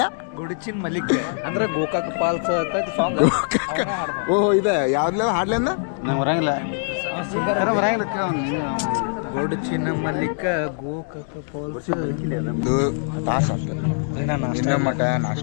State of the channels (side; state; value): right; silent; digital silence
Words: ಗೊಡಚಿನ್ ಮಲಿಕ್ ಅಂದ್ರೆ ಗೋಕಾಕ್ ಪಾಲ್ಸ್ ಅಂತ ಸಾಂಗ್. ಓಹೋ ಇದೆ ಯಾವ್ದ್ಲ ಹಾಡ್ಲಿಂದ ನಂಗೆ ಬರಂಗಿಲ್ಲ, ಗೊಡಚಿನ ಮಲಿಕ ಗೋಕಾಕ್ ಪಾಲ್ಸ್. ಇದು ತಾಸು ಅಷ್ಟೆ, ಇನ್ನೂ ಮಠ